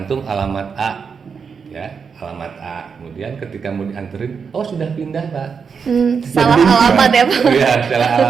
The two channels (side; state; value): left; quieter; 6.0 dB